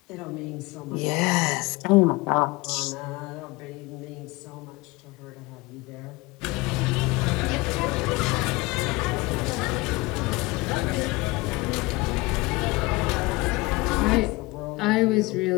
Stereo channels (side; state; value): right; quieter; 22.8 dB